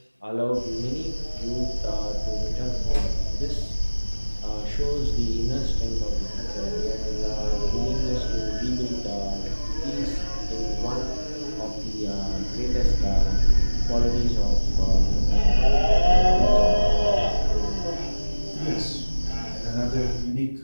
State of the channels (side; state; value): both; inverted; correlation -1.00